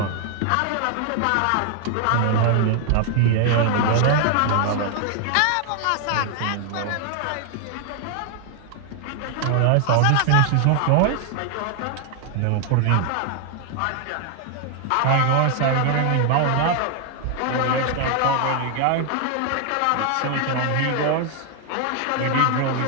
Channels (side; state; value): both; different; correlation 0.00